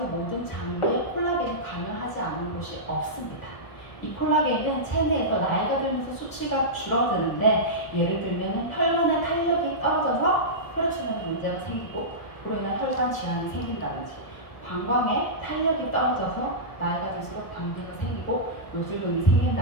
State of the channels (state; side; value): late; right; 1.4 ms